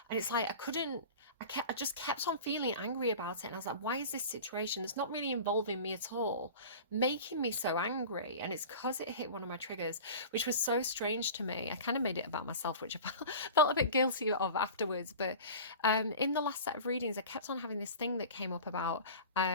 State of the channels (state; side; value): inverted; both; correlation -0.36